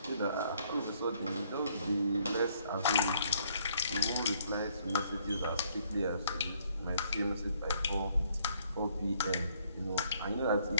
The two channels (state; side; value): inverted; both; correlation -0.66